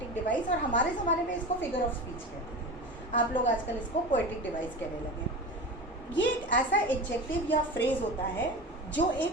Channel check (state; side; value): normal; both; correlation 0.29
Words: डिवाइस, और हमारे ज़माने में इसको फिगर ऑफ स्पीच कहते थे, आप लोग आजकल इसको पोएटिक डिवाइस कहने लगे। ये एक ऐसा एडजेक्टिव या फ्रेज होता है जो